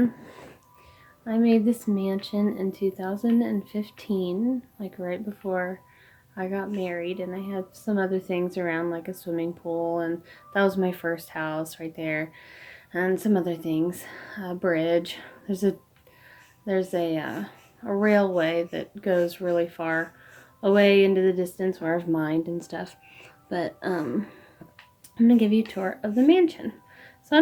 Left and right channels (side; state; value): both; identical; correlation 1.00